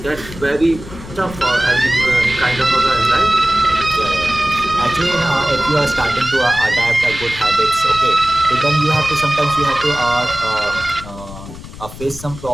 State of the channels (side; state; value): left; noise; rumble, 14 dB below the sound